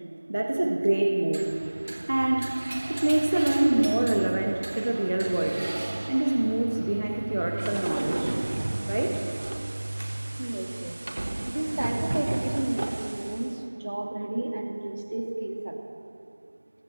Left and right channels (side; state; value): both; inverted; correlation -1.00